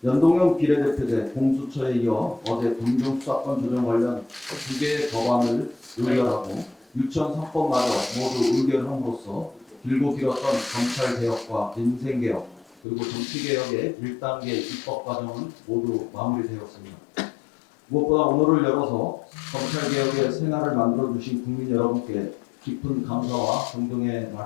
연동형 비례대표제 공수처에 이어 어제 공정수사권 조정 관련 2개의 법안을 의결하고 유치원 3법마저 모두 의결함으로써 길고 길었던 검찰개혁과 민생개혁 그리고 정치개혁의 1단계 입법 과정은 모두 마무리되었습니다. 무엇보다 오늘을 열어서 검찰개혁의 새날을 만들어주신 국민 여러분께 깊은 감사와 존경의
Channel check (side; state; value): right; drops out; at 12.8 s